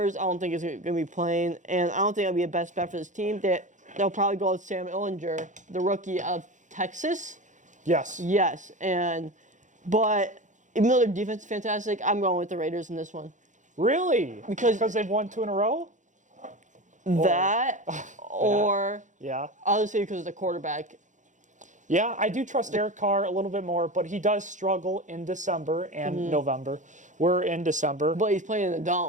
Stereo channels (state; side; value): late; left; 0.36 ms